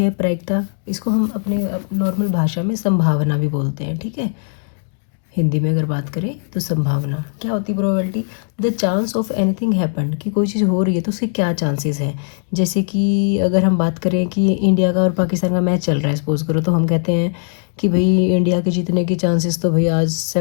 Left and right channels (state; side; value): silent; right; digital silence